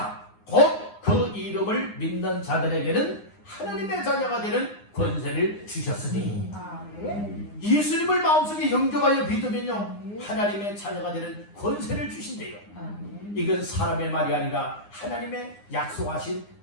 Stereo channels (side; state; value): right; late; 9.8 ms